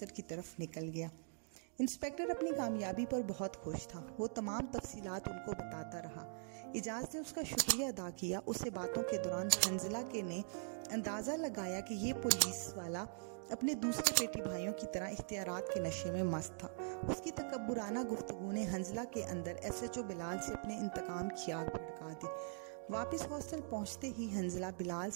کی طرف نکل گیا۔ انسپیکٹر اپنی کامیابی پر بہت خوش تھا۔ وہ تمام تفصیلات ان کو بتاتا رہا۔ اعجاز نے اس کا شکریہ ادا کیا۔ اس سے باتوں کے دوران حنزلہ نے اندازہ لگایا کہ یہ پولیس والا اپنے دوسرے بیٹی بھائیوں کی طرح اختیارات کے نشے میں مست تھا۔ اس کی تکبرانہ گفتگو نے حنزلہ کے اندر SHO بلال سے اپنے انتقام کی آگ بھڑکا دی۔ واپس ہاسٹل پہنچتے ہی حنزلہ بلال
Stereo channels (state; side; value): silent; left; digital silence